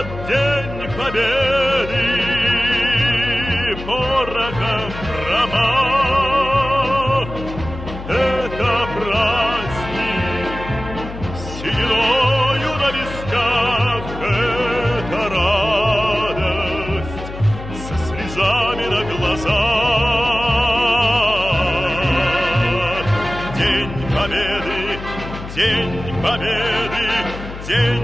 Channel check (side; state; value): left; noise; hum, 11 dB below the sound